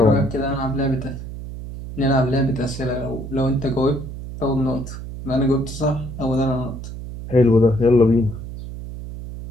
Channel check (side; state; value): right; noise; hum, 10 dB below the sound